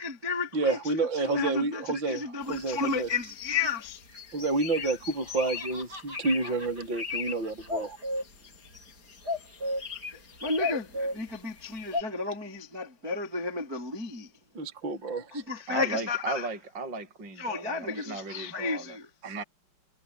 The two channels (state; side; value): late; left; 4.9 ms